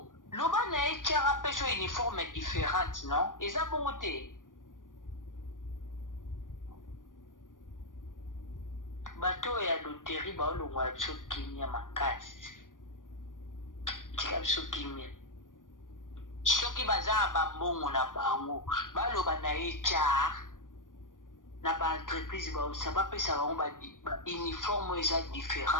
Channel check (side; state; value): right; late; 0.88 ms